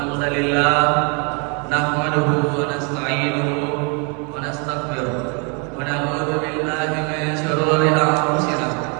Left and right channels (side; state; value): left; quieter; 35.0 dB